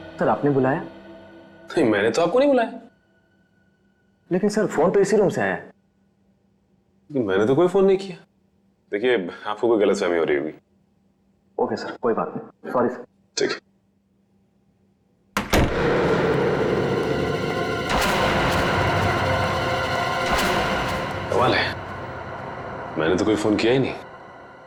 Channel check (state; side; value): identical; both; correlation 1.00